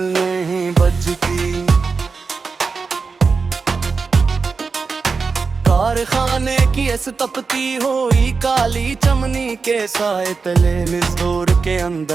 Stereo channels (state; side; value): quieter; left; 4.8 dB